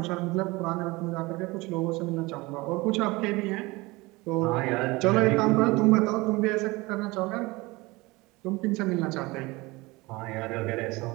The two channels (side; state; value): left; quieter; 22.6 dB